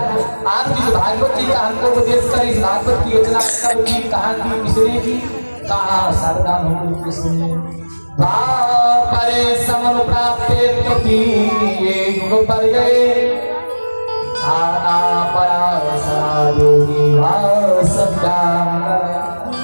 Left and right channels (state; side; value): inverted; both; correlation -1.00